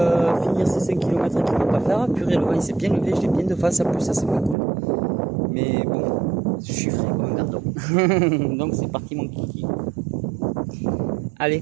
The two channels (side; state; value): left; drops out; at 4.5 s